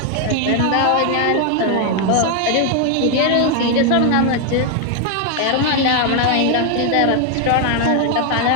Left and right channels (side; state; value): both; different; correlation 0.00